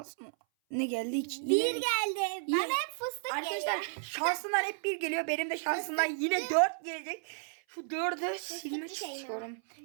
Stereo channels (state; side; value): silent; left; 56 dB below the other